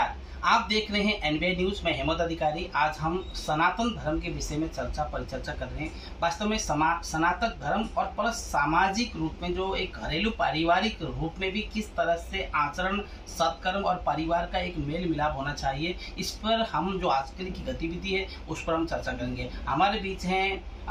आप देख रहे हैं एनबीए न्यूज़ में हेमंत अधिकारी। आज हम सनातन धर्म के विषय में परिचर्चा कर रहे हैं। वास्तव में सनातन धर्म और प्लस सामाजिक रूप में जो एक घरेलू पारिवारिक रूप में भी किस तरह से आचरण, सत्कर्म और परिवार का एक मेल मिलाप होना चाहिए, इस पर हम जो आजकल की गतिविधि है उस पर हम चर्चा करेंगे। हमारे बीच हैं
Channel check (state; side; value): identical; both; correlation 1.00